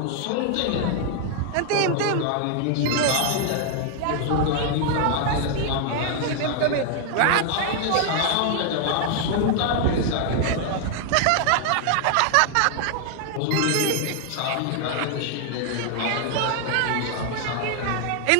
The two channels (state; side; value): different; both; correlation 0.00